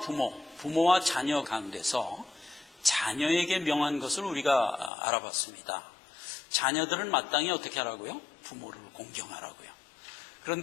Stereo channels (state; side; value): drops out; right; at 4.9 s